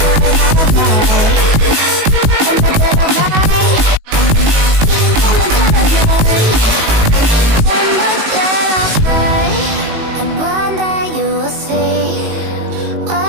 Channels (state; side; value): late; left; 19 ms